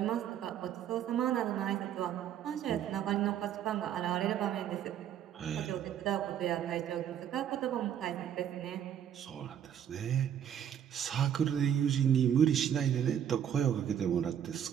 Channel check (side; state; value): left; quieter; 9.5 dB